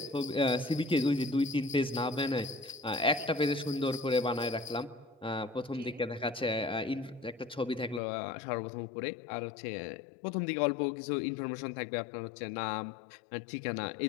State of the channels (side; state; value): right; drops out; at 8.0 s